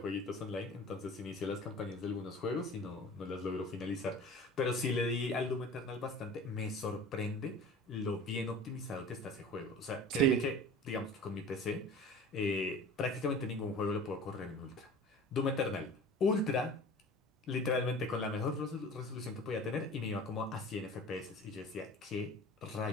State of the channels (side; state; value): both; normal; correlation 0.40